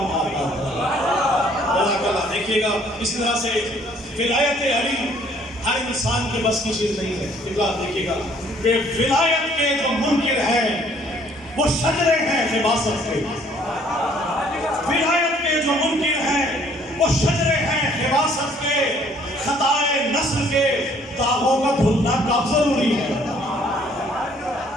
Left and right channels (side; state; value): both; normal; correlation 0.61